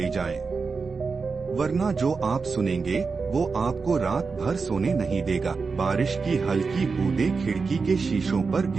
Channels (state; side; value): quieter; left; 4.7 dB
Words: जाएं, वरना जो आप सुनेंगे वो आपको रात भर सोने नहीं देगा। बारिश की हल्की बूंदें खिड़की के शीशों पर